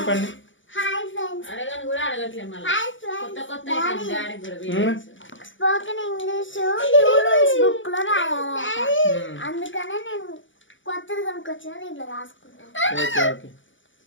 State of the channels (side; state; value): right; late; 0.56 ms